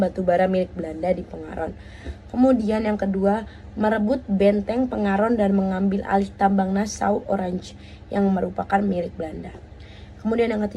milik Belanda di Pengaron. Kemudian yang kedua, merebut benteng Pengaron dan mengambil alih tambang Nassau Orange yang merupakan milik Belanda. Kemudian yang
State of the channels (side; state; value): both; identical; correlation 1.00